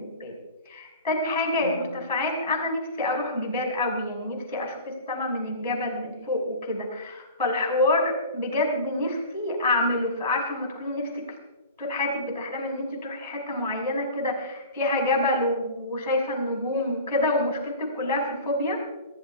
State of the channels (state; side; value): inverted; both; correlation -0.36